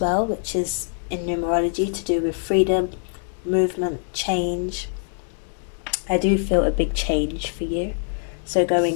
well, which is in numerology to do with freedom, movement, change. I do feel a big change for you. So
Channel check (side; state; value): right; silent; 63 dB below the other